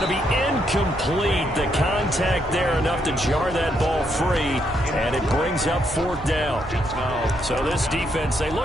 to be incomplete. The contact there enough to jar that ball free, and it brings up 4th down. So this defense, they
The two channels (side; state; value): both; normal; correlation 0.76